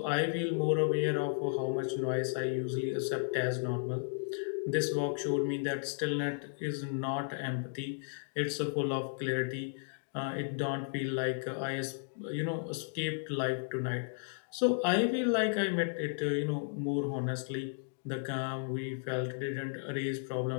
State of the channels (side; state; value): right; silent; digital silence